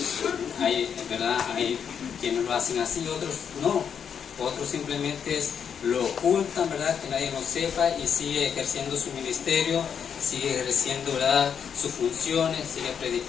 ¿Verdad? Hay quienes lo hacen así, otros no, otros simplemente lo ocultan, ¿verdad? Que nadie lo sepa, y sigue ejerciendo su ministerio, sigue ejerciendo, ¿verdad? Sus funciones, sigue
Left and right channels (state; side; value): quieter; right; 7.5 dB